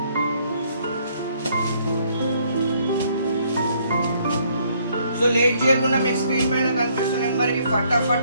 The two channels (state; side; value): inverted; both; correlation -0.66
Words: సో లేట్ చేయకుండా మీకు స్క్రీన్ పైన కనిపిస్తున్న నెంబర్కి